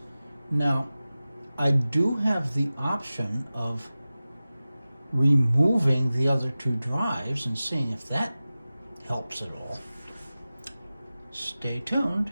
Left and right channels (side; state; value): both; inverted; correlation -0.96